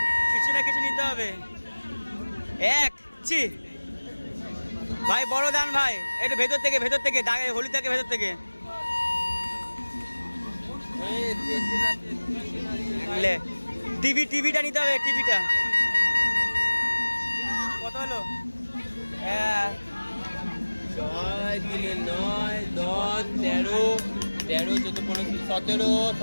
কিছু না কিছু নিতে হবে ভাই বড় দান ভাই একটু ভেতর থেকে দাগে হোলি থেকে ভেতর থেকে টিভিটা নিতে হবে টিভিটা কত হলো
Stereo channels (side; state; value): both; inverted; correlation -1.00